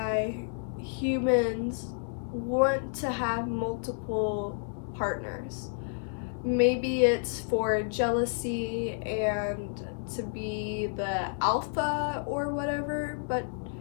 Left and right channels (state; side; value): silent; right; digital silence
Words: humans want to have multiple partners. Maybe it's for jealousy and to be the alpha or whatever, but